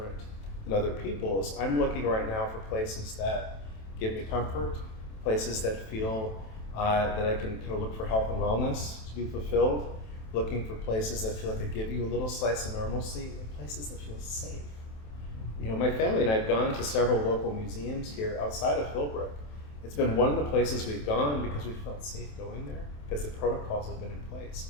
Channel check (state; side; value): late; right; 27 ms